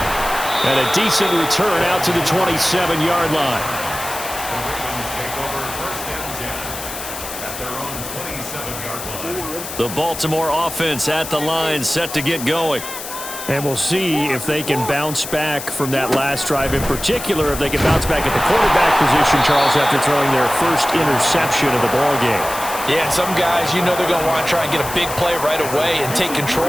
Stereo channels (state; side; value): noise; left; hiss, 9 dB below the sound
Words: And a decent return out to the 27-yard line. The Baltimore offense at the line, set to get going. And we'll see if they can bounce back from that last drive. In particular, if they can bounce back at the quarterback position, Charles, after throwing their first interception of the ball game. Yeah, and some guys, you know they're going to want to try and get a big play right away and take